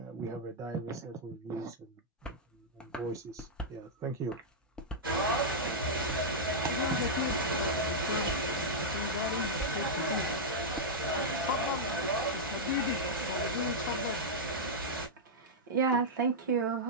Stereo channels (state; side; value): normal; both; correlation -0.07